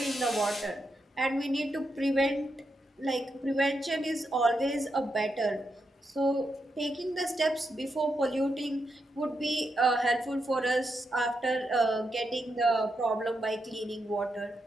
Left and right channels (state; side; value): normal; both; correlation 0.84